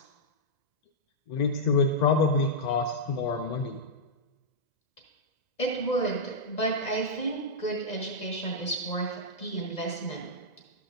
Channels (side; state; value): right; late; 2.0 ms